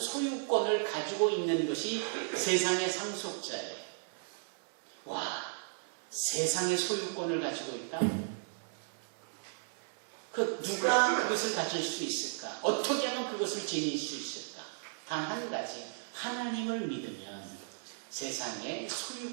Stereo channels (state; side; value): silent; left; digital silence